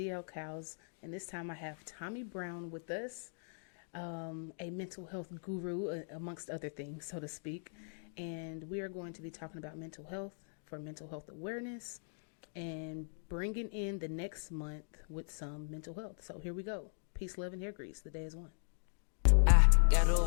Cows, and this time I have Tommy Brown with us, a mental health guru, amongst other things, so to speak. And we are going to be talking about mental health for mental health awareness and bringing in the next month with some mental health. So here we go. Peace, love, and hair grease. The day is one. I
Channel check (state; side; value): silent; right; digital silence